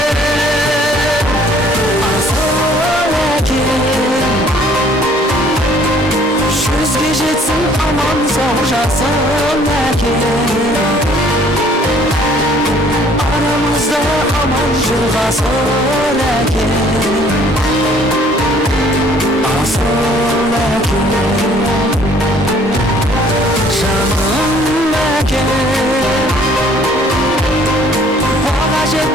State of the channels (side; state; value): both; normal; correlation 0.58